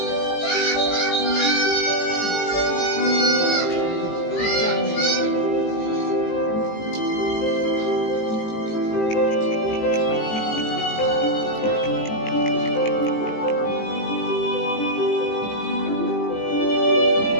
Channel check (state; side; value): late; right; 18 ms